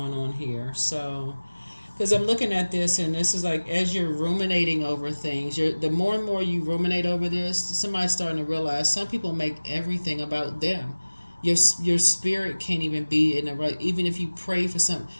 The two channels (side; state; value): both; inverted; correlation -1.00